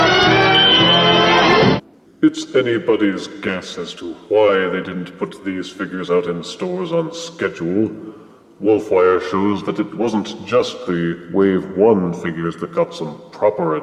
It's anybody's guess as to why they didn't put these figures out in stores on schedule. Wolfwire shows that it wasn't just the Wave 1 figures that got some proper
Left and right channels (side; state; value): both; identical; correlation 1.00